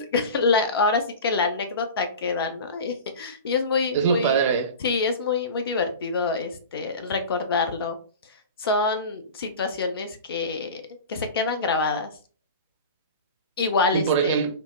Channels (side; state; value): both; inverted; correlation -0.32